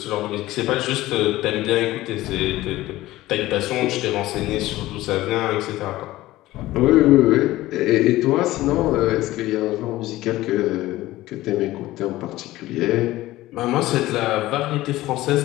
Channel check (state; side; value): quieter; right; 16.8 dB